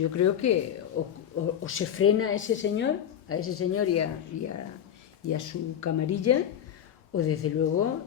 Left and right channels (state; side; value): quieter; right; 9.5 dB